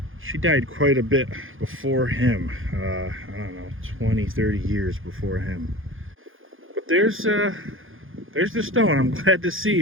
She died quite a bit before him. I don't know, 20, 30 years before him. But there's the stone. I'm glad to see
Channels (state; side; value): late; left; 0.59 ms